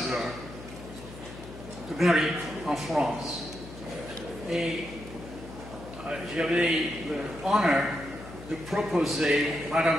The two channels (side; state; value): left; noise; hum, 14 dB below the sound